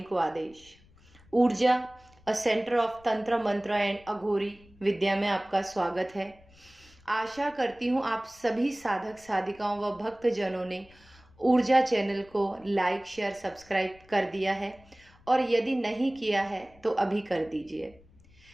को आदेश। ऊर्जा अ सेंटर ऑफ तंत्र मंत्र एंड अघोरी विद्या में आपका स्वागत है। आशा करती हूँ आप सभी साधक साधिकाओं व भक्त जनों ने ऊर्जा चैनल को लाइक शेयर सब्सक्राइब कर दिया है, और यदि नहीं किया है तो अभी कर दीजिए।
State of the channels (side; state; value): left; noise; rumble, 27 dB below the sound